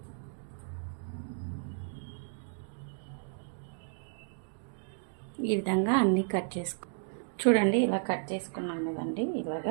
ఈ విధంగా అన్నీ కట్ చేసుకో చూడండి. ఇలా కట్ చేసుకున్నాం కదండి,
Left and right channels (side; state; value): left; silent; digital silence